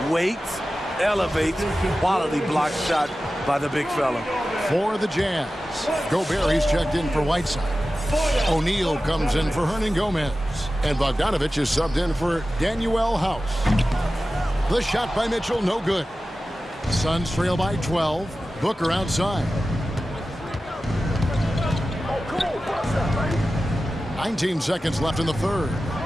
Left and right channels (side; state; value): both; normal; correlation 0.94